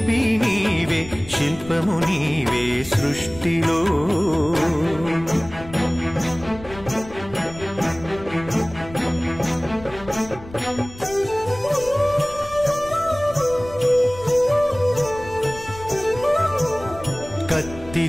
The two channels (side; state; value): left; noise; rumble, 16 dB below the sound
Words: నీవే, శిల్పము నీవే సృష్టిలో.